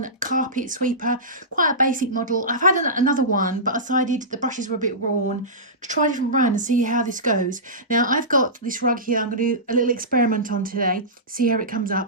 carpet sweeper, quite a basic model. I've had another one, but I decided the brushes were a bit worn to try a different brand and see how this goes. Now I've got this rug here. I'm going to do a little experiment on today, see how it comes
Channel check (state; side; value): normal; both; correlation -0.18